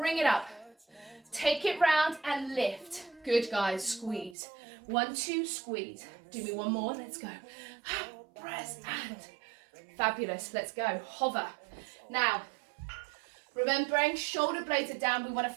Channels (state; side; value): drops out; left; at 4.4 s